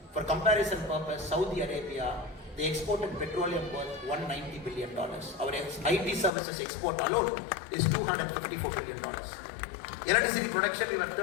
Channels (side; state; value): right; drops out; at 6.3 s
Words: For comparison purpose, Saudi Arabia, they exported petroleum worth $190 billion. Our IT services export alone is $254 billion. Electricity production, we were